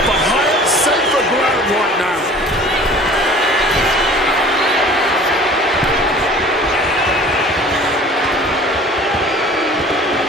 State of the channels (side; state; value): both; normal; correlation 0.46